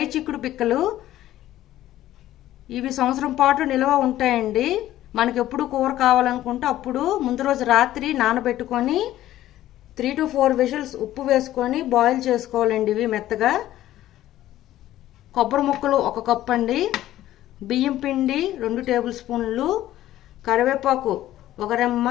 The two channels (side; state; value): right; quieter; 13.9 dB